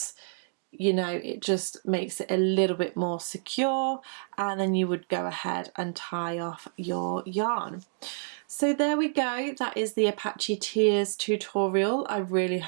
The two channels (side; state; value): left; silent; digital silence